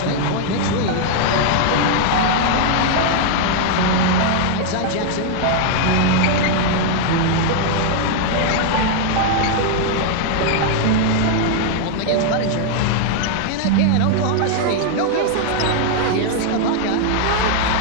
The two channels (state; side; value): different; both; correlation 0.00